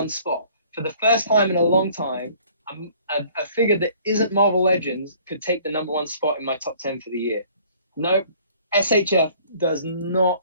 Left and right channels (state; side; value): inverted; both; correlation -0.55